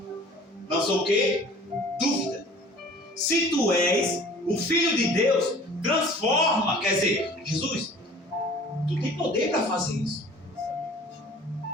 não sou o quê? Dúvida. Se tu és o Filho de Deus, transforma. Quer dizer, Jesus, tu tem poder para fazer isso.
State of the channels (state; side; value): normal; both; correlation 0.47